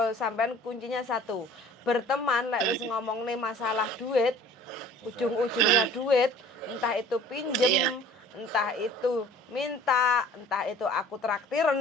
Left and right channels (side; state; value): both; normal; correlation 0.49